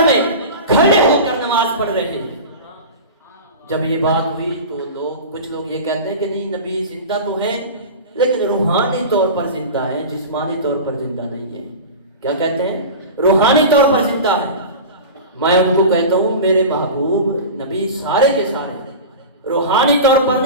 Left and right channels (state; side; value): inverted; both; correlation -0.31